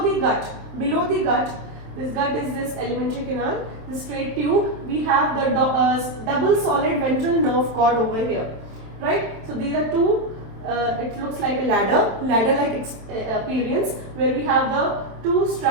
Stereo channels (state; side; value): late; left; 27 ms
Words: the gut, this gut is this alimentary canal, the straight tube, we have the double solid ventral nerve cord over here. Right, so these are two, it looks like a ladder-like appearance where we have the two